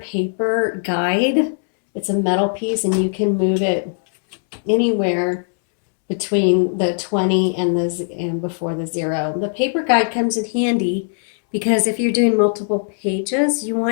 guide. It's a metal piece and you can move it anywhere between the 20 and before the 0. The paper guide comes in handy because if you're doing multiple pages, you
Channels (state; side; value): silent; right; 65 dB below the other